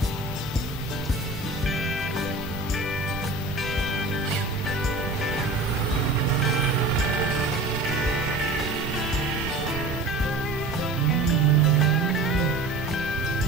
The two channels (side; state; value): left; quieter; 3.2 dB